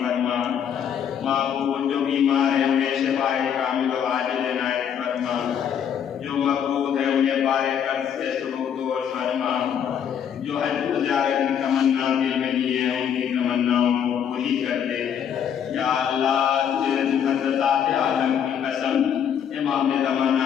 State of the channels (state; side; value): quieter; right; 8.5 dB